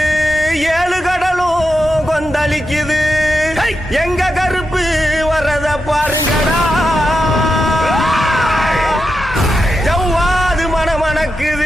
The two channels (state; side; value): normal; both; correlation 0.88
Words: ஏழு கடலும் கொந்தளிக்குது எங்க கருப்பு வரத பாருங்கடா ஜவ்வாது